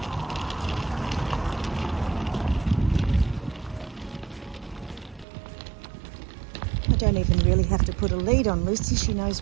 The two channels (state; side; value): drops out; left; at 5.2 s